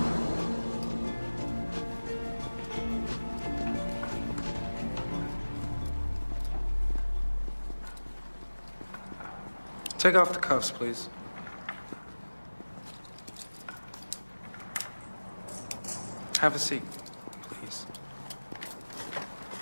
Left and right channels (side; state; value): both; inverted; correlation -1.00